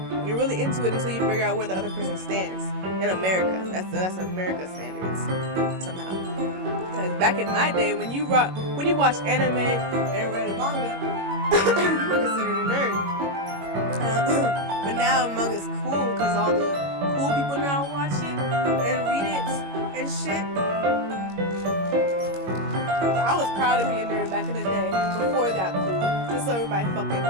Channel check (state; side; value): late; left; 21 ms